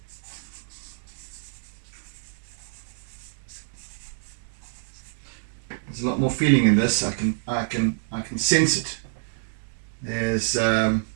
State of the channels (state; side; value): silent; left; digital silence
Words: There's a lot more feeling in this. I can sense it. There's